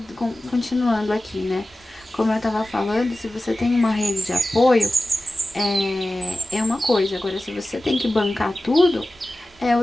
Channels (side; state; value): both; normal; correlation 0.95